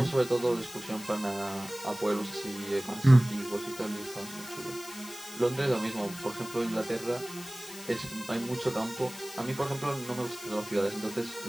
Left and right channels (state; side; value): noise; left; hiss, 14 dB below the sound